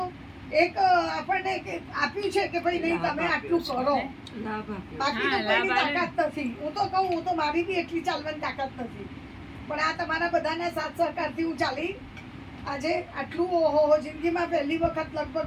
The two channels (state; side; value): identical; both; correlation 1.00